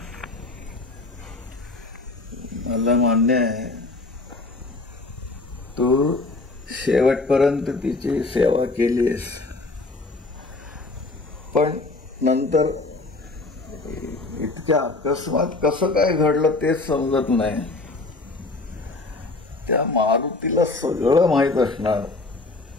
मला मान्य आहे तू शेवटपर्यंत तिची सेवा केलीस, पण नंतर इतक्या अकस्मात कसं काय घडलं तेच समजत नाही. त्या मारुतीला सगळं माहीत असणार,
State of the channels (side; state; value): right; quieter; 3.3 dB